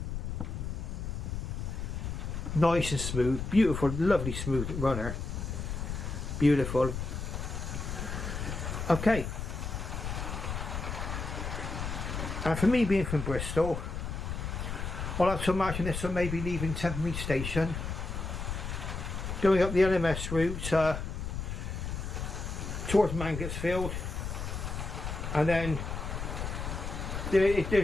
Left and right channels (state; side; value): noise; left; rumble, 4 dB below the sound